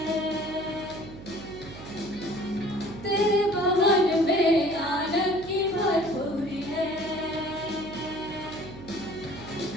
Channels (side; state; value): right; noise; hum, 14 dB below the sound